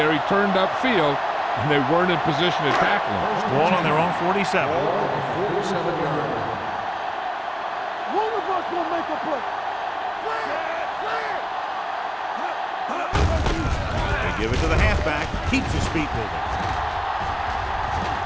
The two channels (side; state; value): both; identical; correlation 1.00